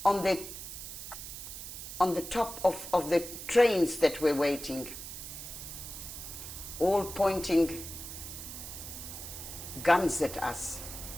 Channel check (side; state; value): right; noise; hiss, 9 dB below the sound